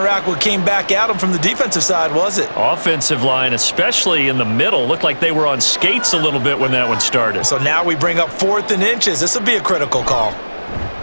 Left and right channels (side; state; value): both; inverted; correlation -1.00